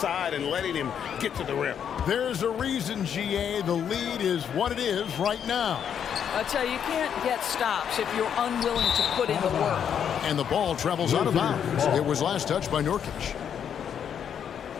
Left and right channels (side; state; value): right; quieter; 8.4 dB